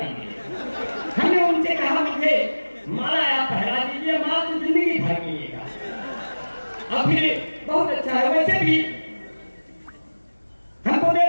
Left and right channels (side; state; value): both; inverted; correlation -1.00